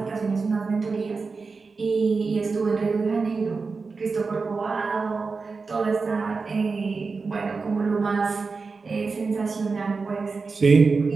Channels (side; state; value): left; quieter; 4.4 dB